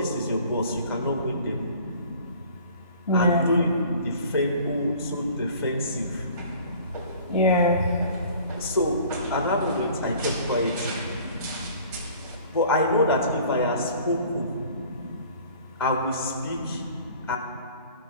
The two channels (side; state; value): both; inverted; correlation -0.49